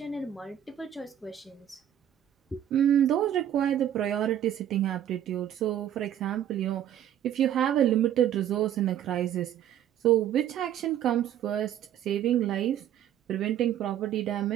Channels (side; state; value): left; quieter; 10.8 dB